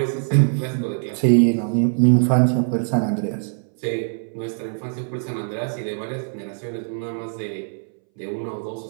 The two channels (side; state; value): left; silent; 62 dB below the other